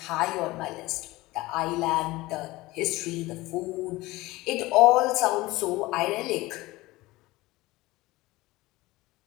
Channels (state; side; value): quieter; right; 19.7 dB